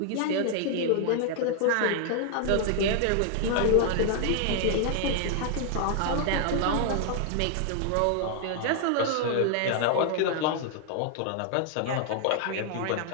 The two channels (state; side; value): different; both; correlation 0.00